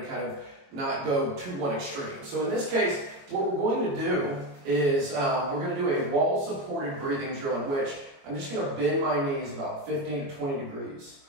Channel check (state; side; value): late; left; 21 ms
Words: to kind of not go to one extreme. So in this case, what we're going to do is we're going to do a wall-supported breathing drill in which I'm just going to bend my knees about 15 to 20 degrees.